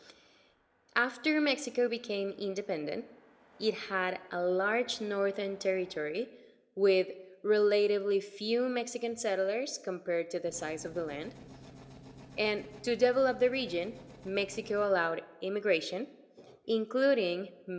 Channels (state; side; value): identical; both; correlation 1.00